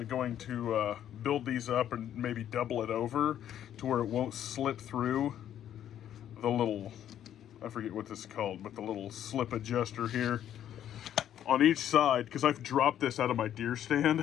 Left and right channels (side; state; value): right; quieter; 10.6 dB